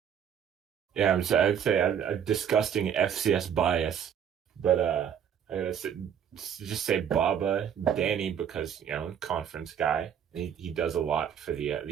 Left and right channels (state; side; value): quieter; left; 8.5 dB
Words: Yeah, I'd say a disgusting FCS bias, but I gotta just say Baba, Danny, because conference guy. He does a lot for the